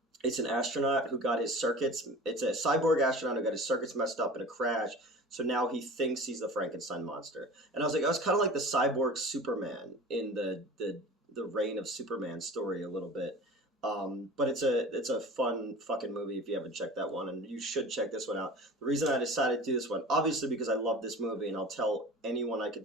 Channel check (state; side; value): normal; both; correlation 0.38